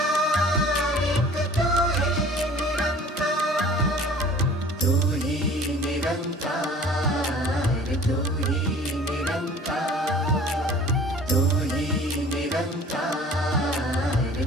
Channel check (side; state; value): both; normal; correlation 0.48